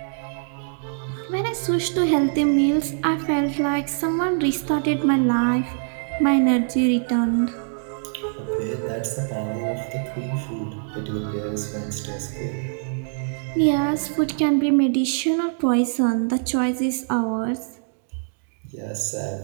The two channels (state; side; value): silent; left; digital silence